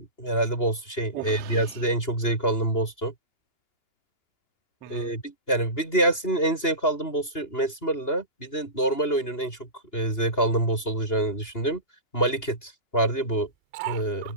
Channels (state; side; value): late; right; 2.9 ms